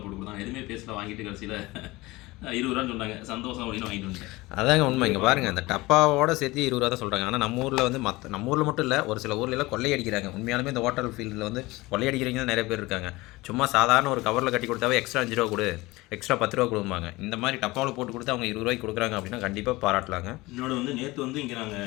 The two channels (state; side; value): quieter; right; 21.0 dB